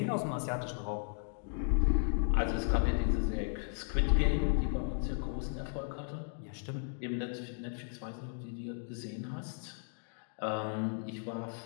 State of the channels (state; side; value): silent; right; digital silence